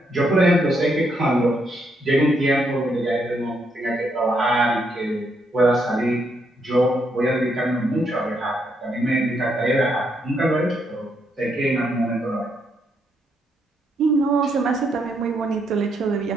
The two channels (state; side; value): normal; both; correlation 0.76